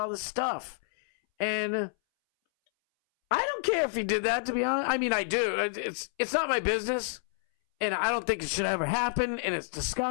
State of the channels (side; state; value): right; silent; 59 dB below the other